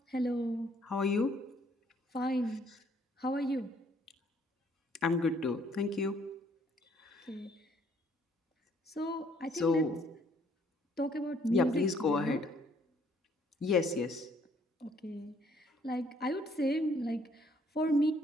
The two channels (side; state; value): both; normal; correlation 0.65